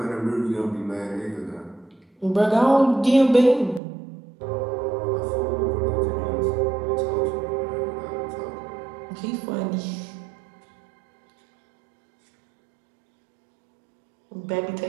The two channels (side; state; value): left; drops out; at 3.8 s